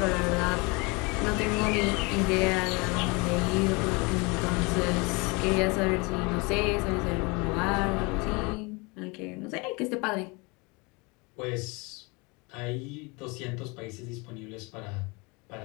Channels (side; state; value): right; quieter; 28.0 dB